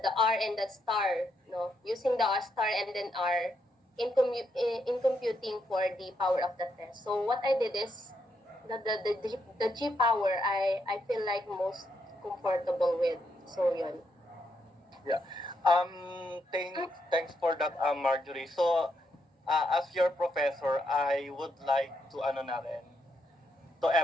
R and the star, no, using the star and then R in computing for the power of the test. So what I did is the G power I feel like most comfortable with. So yun. Yeah. Thanks for that, Marjorie. So, as your professor, I would like to to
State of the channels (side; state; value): both; normal; correlation 0.79